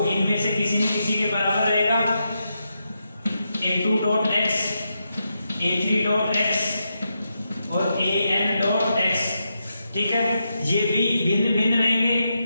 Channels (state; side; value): inverted; both; correlation -0.85